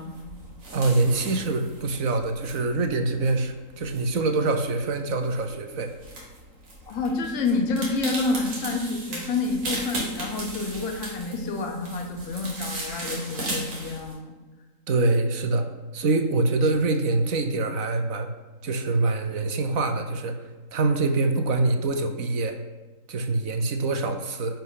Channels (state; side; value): late; left; 3.8 ms